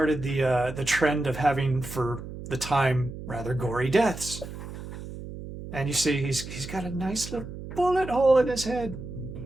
the trend of having, for the time, rather gory deaths. And you see he's got a nice little bullet hole in his head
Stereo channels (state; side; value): noise; right; hum, 11 dB below the sound